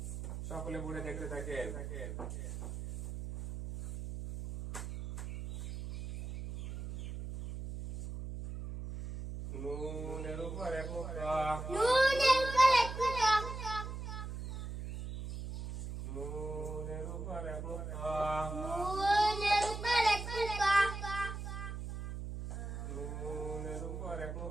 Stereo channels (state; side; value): noise; right; hum, 7 dB below the sound